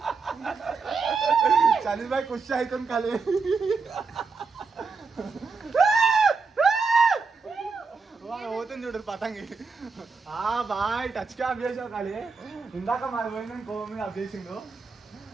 ఖుషి అవుతుంది కాలే. పోతుంది చూడరు పతంగి. బాయ్ టచ్ కి ఆఫ్ చేసావు కాలే. ఇందాక మాది పోయింది కోవ మీద ఆఫ్ చేసిండు.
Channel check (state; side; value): quieter; left; 4.6 dB